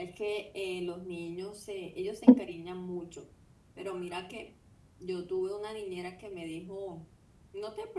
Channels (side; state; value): both; identical; correlation 1.00